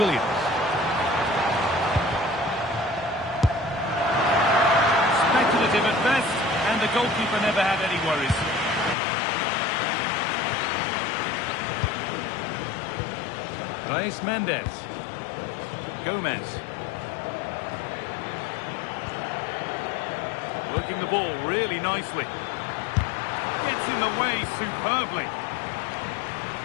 Speculative at best, and the goalkeeper never had any worries. Reis Mendes. Gomez. Working the ball really nicely. Gets in the way superbly.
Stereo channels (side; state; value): right; drops out; at 9.0 s